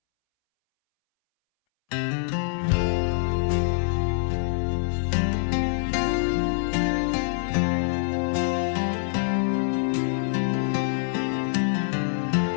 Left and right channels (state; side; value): silent; right; 62 dB below the other